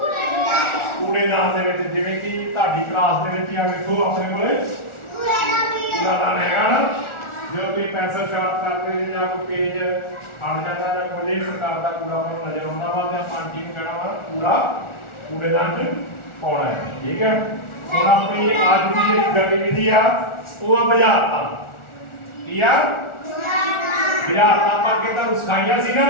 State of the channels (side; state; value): right; late; 1.4 ms